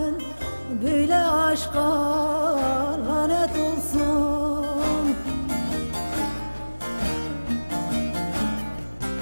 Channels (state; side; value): inverted; both; correlation -1.00